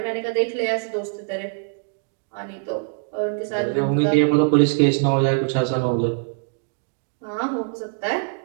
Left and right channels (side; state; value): left; silent; 63 dB below the other